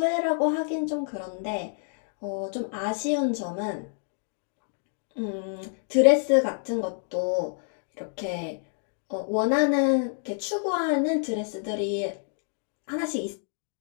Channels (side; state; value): right; silent; digital silence